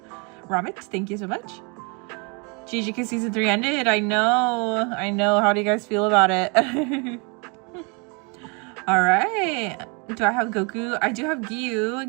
thank you so much. GGK Season 3 ended. I know. How do you guys feel about it? All right. Do I have Goku? I do have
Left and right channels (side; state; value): left; quieter; 33.0 dB